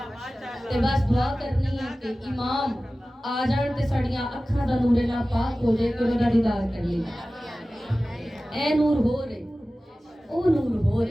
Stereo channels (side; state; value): both; normal; correlation 0.96